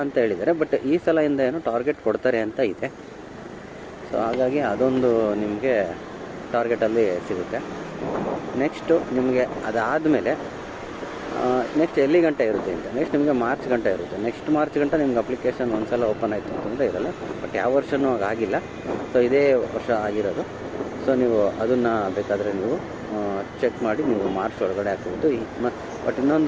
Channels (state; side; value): identical; both; correlation 1.00